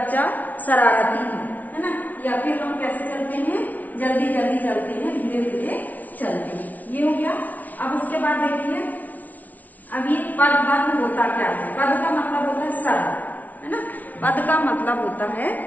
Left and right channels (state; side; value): late; right; 0.075 ms